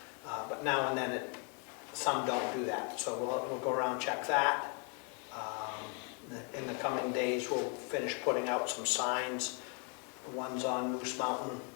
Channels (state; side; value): quieter; right; 35.9 dB